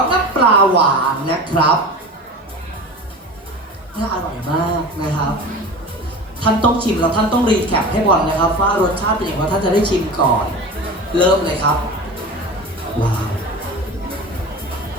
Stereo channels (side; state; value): both; normal; correlation 0.33